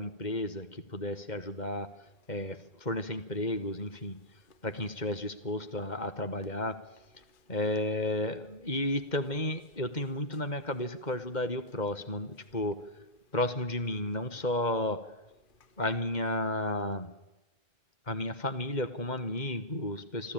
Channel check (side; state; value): right; late; 2.1 ms